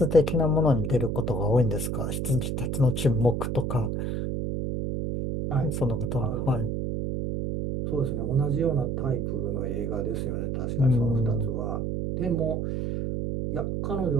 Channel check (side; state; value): right; noise; hum, 1 dB below the sound